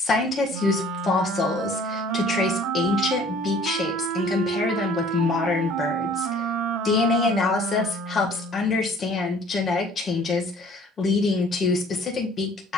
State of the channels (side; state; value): both; normal; correlation 0.53